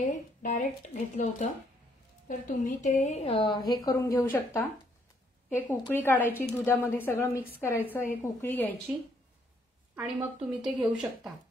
डायरेक्ट घेतलं होतं, तर तुम्ही ते हे करून घेऊ शकता. एक उकळी काढायची, दुधामध्ये सगळं मिक्स करायचं, एक उकळी घ्यायची आणि मग तुम्ही ते घेऊ शकता.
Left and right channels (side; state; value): both; normal; correlation 0.70